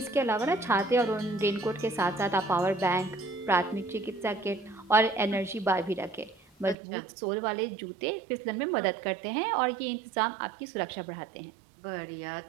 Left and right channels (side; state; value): left; drops out; at 6.8 s